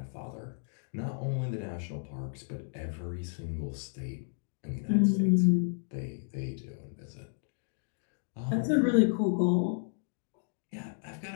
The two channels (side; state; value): right; silent; digital silence